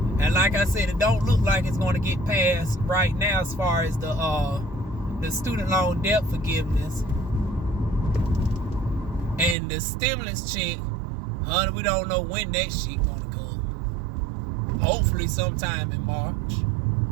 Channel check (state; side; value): drops out; left; at 9.6 s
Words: And like I said, it don't look like it's going to get passed right now as far as the student loan debt forgiveness. And the stimulus check, honey, we don't know when that shit going to come. Hopefully sometime in March